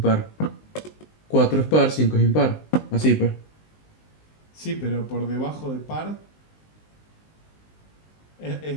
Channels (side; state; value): right; late; 19 ms